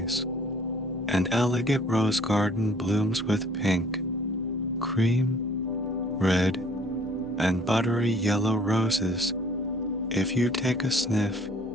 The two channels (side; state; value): both; normal; correlation 0.56